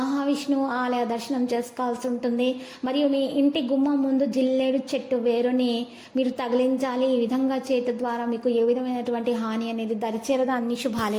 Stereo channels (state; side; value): identical; both; correlation 1.00